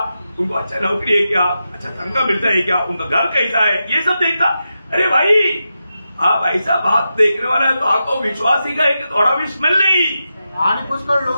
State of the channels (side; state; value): both; inverted; correlation -0.89